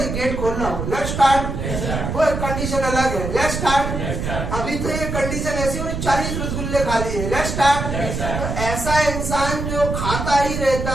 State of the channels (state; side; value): noise; right; rumble, 3 dB below the sound